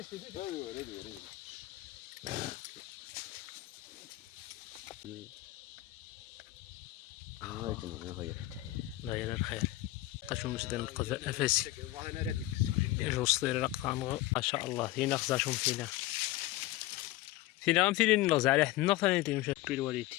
تفرق. داير الخير قشو مسدن القذاء افاسي يجو صدير رقطان ما شاء الله فينا خزاشهم فينا غنمثلين نغز على حد النغ ثاني تيمشي بيل والدي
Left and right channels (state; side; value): quieter; right; 17.3 dB